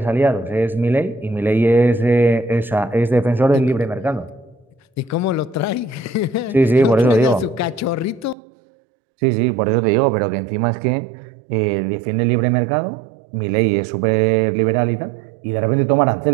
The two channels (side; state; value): left; drops out; at 8.3 s